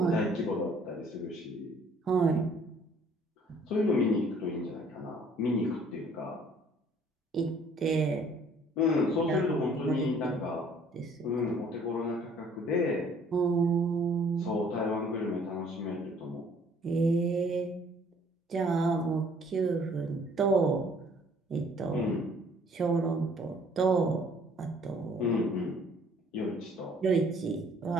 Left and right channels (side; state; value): both; normal; correlation 0.58